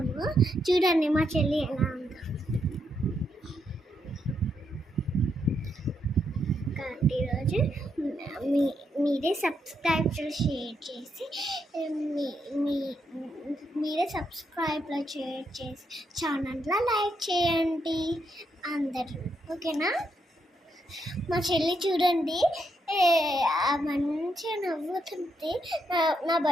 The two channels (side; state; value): both; normal; correlation 0.79